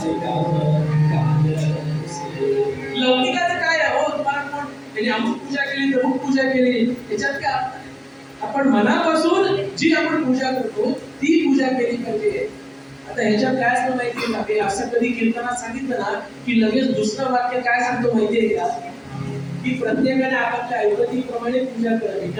काम लौकिकाचं काय आहे हो? तुम्हाला कोण त्यांनी अमुक पूजा केली तमुक पूजा केली त्याच्यात काय? आपण मनापासून जी आपण पूजा करतो ती पूजा केली पाहिजे. आता ह्याच्यात काय असतं माहितीये का? हे असं कधी कीर्तनात सांगितलं ना की लगेच दुसरं वाक्य काय सांगतो माहितीये का? की प्रत्येकाने आपापल्या ऐपतीप्रमाणे पूजा करावी,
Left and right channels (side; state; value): both; identical; correlation 1.00